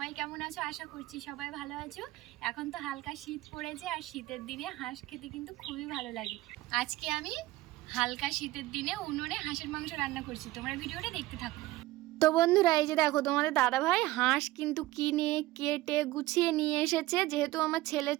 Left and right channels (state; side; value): quieter; left; 17.7 dB